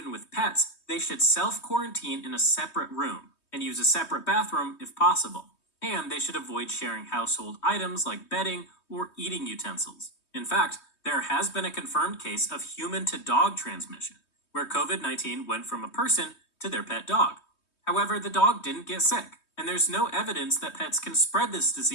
with pets, they should self-quarantine in a separate room, and use a separate bathroom if possible. And they should avoid sharing household items like bedding or eating utensils. In fact, there has been a confirmed case of human-to-dog transmission, where COVID-19 went from a person to their pet dog. However, the dog didn't get sick, and there's no evidence that pets can spread this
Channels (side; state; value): right; late; 3.2 ms